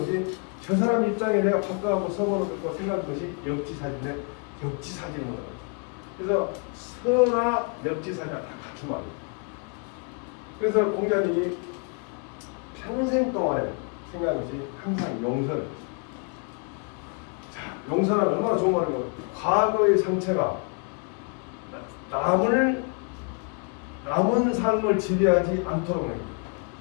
것이 저 사람 입장에 내가 바꿔갖고 서보는 것과 생각하는 것이 역지사지인데 역지사지인 거다. 그래서 서나 역지사지가 다 같은 말이에요. 그래서 공자님이 평생 동안에 생각한 것이 항상 용서를. 자, 용서는 얼마나 좋은 말인가. 과거의 상처가 남은 삶을 지배하지 않도록 합니다.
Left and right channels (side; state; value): right; quieter; 37.4 dB